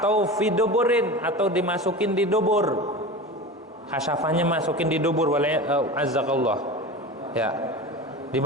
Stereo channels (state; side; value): normal; both; correlation 0.30